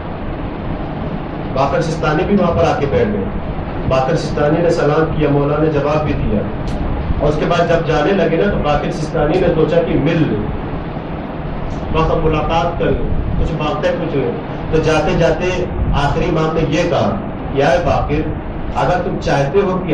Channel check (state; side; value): identical; both; correlation 1.00